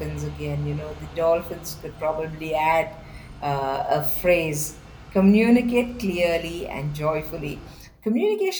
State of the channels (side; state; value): both; identical; correlation 1.00